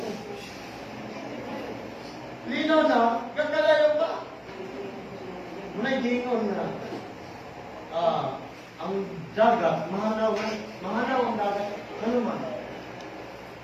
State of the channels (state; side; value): identical; both; correlation 1.00